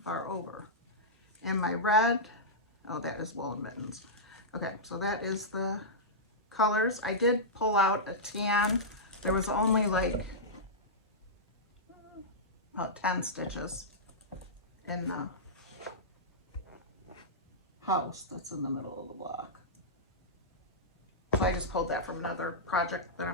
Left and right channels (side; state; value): both; normal; correlation -0.13